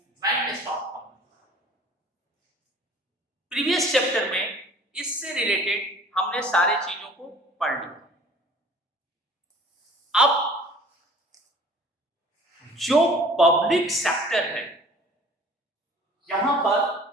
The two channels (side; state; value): both; normal; correlation 0.49